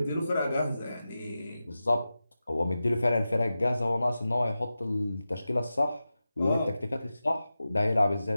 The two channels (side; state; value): both; inverted; correlation -0.93